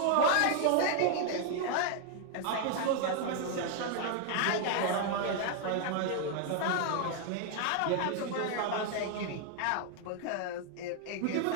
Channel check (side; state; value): both; different; correlation 0.00